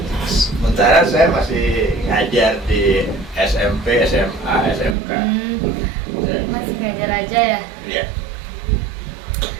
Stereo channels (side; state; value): left; drops out; at 5.0 s